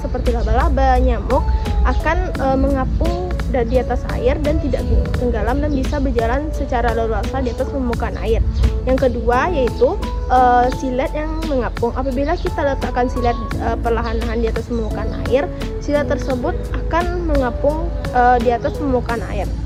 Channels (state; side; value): identical; both; correlation 1.00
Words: laba-laba, nyamuk akan mengapung di atas air dan tidak tenggelam dan bisa berjalan secara leluasa di atas permukaan air. Yang kedua yaitu silet yang mengapung. Apabila kita letakkan silet perlahan-lahan di atas permukaan air, silet tersebut akan mengapung di atas permukaan air.